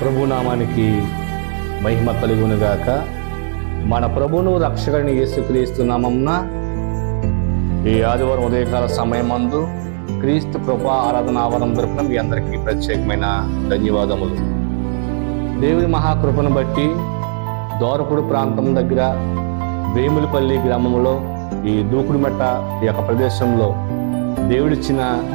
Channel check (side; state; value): left; silent; 66 dB below the other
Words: ప్రభునామానికి మహిమ కలుగునుగాక. మన ప్రభువును రక్షకుని యేసుక్రీస్తు నామమున ఈ ఆదివారం ఉదయకాల సమయమందు క్రీస్తు కృపా ఆరాధన ఆవరణ తరపున మీ అందరికీ ప్రత్యేకమైన ధన్యవాదములు. దేవుని మహాకృపను బట్టి దోరపుడు ప్రాంతం దగ్గర వేములపల్లి గ్రామంలో ఈ దూకుడుమెట్ట ఈ యొక్క ప్రదేశంలో దేవుడిచ్చిన